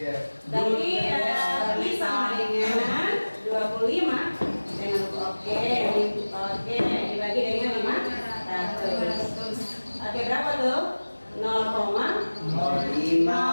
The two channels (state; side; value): inverted; both; correlation -1.00